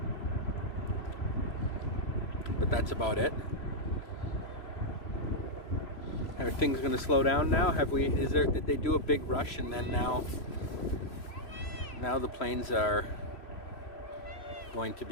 But that's about it. Are things going to slow down now? Did they do a big rush and then now the planes are going to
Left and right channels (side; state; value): right; late; 3.0 ms